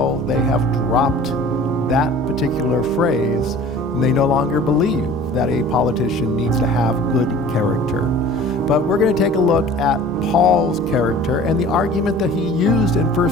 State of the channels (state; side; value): normal; both; correlation 0.45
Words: they have dropped that particular phrase, and they no longer believe that a politician needs to have good character. But we're going to take a look at Paul's character and the argument that he used in